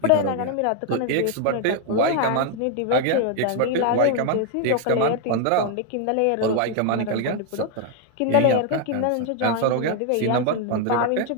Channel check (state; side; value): different; both; correlation 0.00